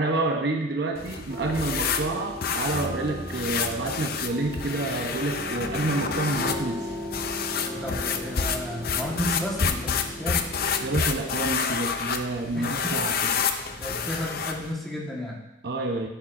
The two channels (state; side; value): normal; both; correlation 0.32